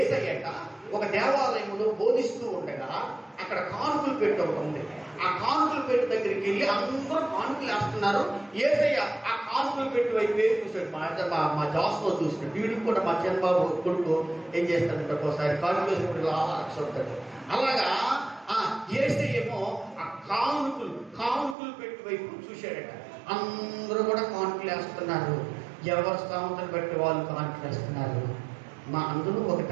ఒక దేవాలయంలో బోధిస్తూ ఉండగా అక్కడ కానుకలు పెట్టి ఒకటి ఉంది. ఆ కానుకలు పెట్టి దగ్గరికి వెళ్ళి అందరూ కానుకలు వేస్తున్నారు. యేసయ్య ఆ కానుకలు పెట్టి వైపు చూసాడు. మా జాస్లో చూసినాడు. వీడికి కూడా మా చంద్రబాబు కొడుకు ఏం చేస్తాడంటే ఒకసారి కానుకలు వేసినప్పుడు ఆలోచిస్తాడు. అలాగా యేసయ్య ఏమో ఆ కానుకలు పెట్టి వైపు చూశాడట. అందరూ కూడా కానుకలు వేస్తున్నారు. ఎవరు స్థామతను బట్టి వాళ్ళు కానుకలు వేస్తున్నారు. అందులో ఒక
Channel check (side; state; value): left; drops out; at 21.6 s